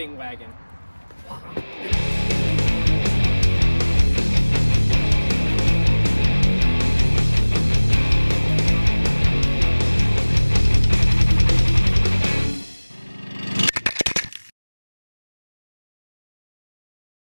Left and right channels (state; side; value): inverted; both; correlation -1.00